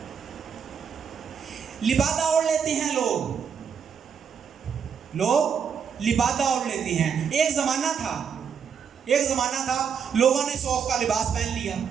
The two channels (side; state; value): left; quieter; 7.0 dB